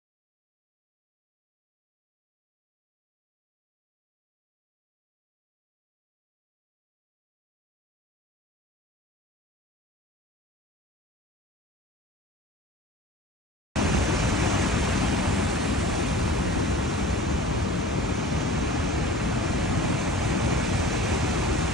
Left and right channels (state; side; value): normal; both; correlation 0.42